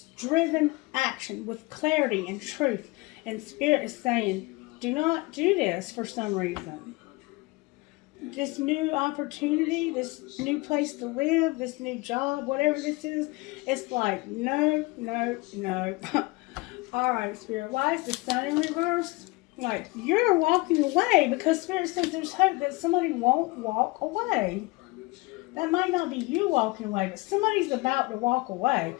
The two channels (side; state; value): right; quieter; 23.9 dB